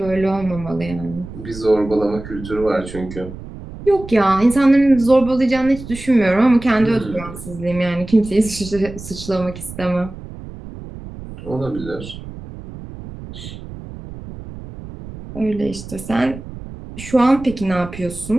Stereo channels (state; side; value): noise; right; rumble, 13 dB below the sound